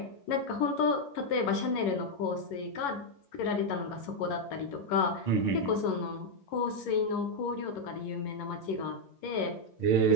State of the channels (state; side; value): late; right; 11 ms